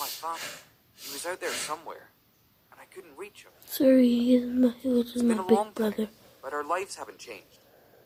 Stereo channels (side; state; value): both; identical; correlation 1.00